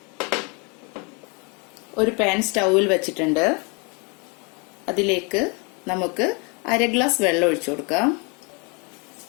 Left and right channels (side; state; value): right; quieter; 32.2 dB